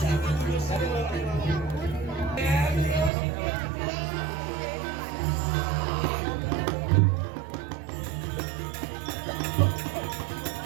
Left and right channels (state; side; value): drops out; left; at 3.1 s